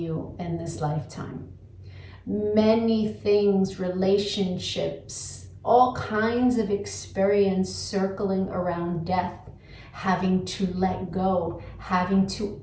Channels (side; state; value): both; identical; correlation 1.00